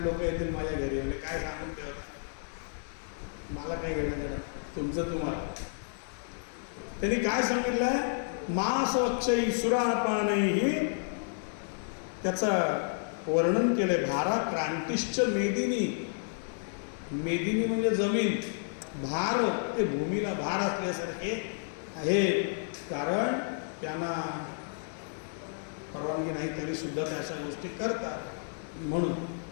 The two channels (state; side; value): silent; right; digital silence